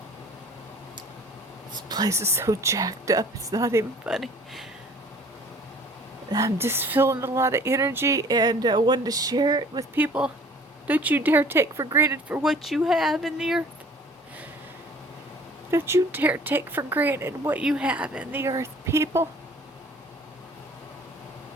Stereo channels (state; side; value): normal; both; correlation 0.51